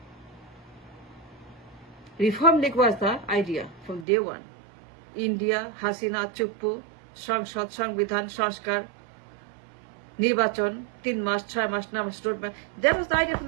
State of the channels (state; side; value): drops out; left; at 4.0 s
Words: Reform League was the idea from day one. India, Hasina, Chuppu, সংসদ, সংবিধান, সংস্কার, নির্বাচন, 3 মাস, 6 মাস, 9 মাস, road map. That was the idea from